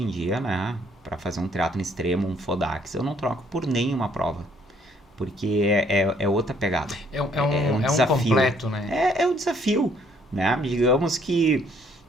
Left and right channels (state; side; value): normal; both; correlation 0.64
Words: em dia, né, para fazer um triatlon extremo, um Fodax, eu não troco por nenhuma prova. Porque é outra pegada. É um desafio. Completo, né? É um desafio, né? Digamos que